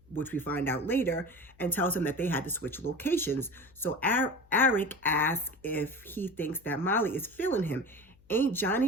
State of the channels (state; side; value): noise; left; hum, 28 dB below the sound